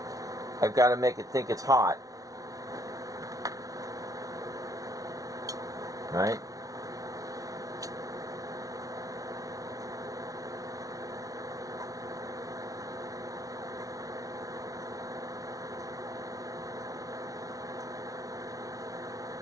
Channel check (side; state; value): left; late; 0.17 ms